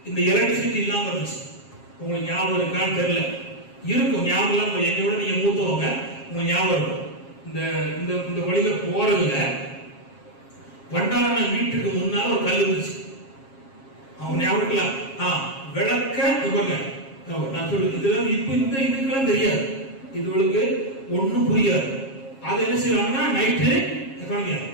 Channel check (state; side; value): late; right; 7.4 ms